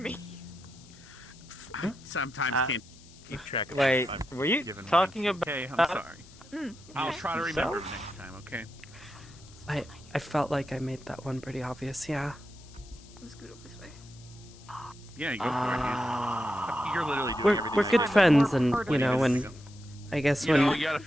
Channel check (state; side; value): noise; left; hiss, 23 dB below the sound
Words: I sometimes can't keep track of. Wait, what I've were you given talking once. about? Okay, I'm sorry. I'll okay. try to remember Yourself? next time. Okay. I felt like I made that one pretty obvious. Yeah. I'm scoot over this way. Yeah, you go for it. You're literally doing everything. We're good friends, and you know, when I guess You when know, you gotta